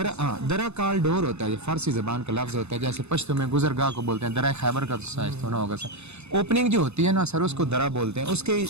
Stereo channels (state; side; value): late; left; 0.81 ms